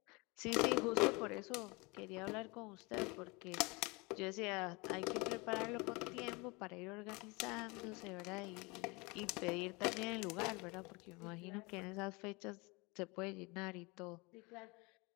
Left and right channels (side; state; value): right; quieter; 26.9 dB